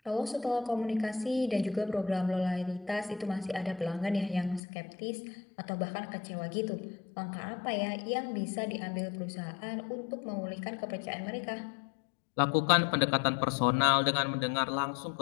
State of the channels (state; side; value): drops out; right; at 4.6 s